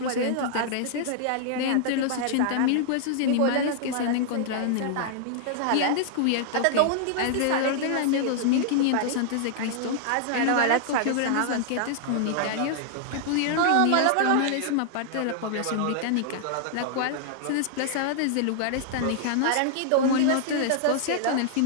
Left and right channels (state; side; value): different; both; correlation -0.01